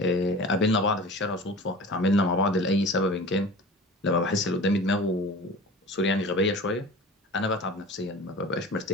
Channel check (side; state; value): both; normal; correlation 0.38